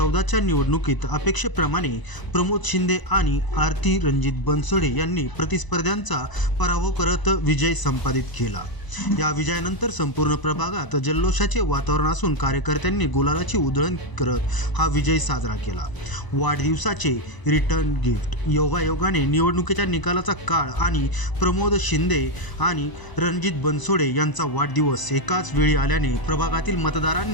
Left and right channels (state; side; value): late; right; 1.0 ms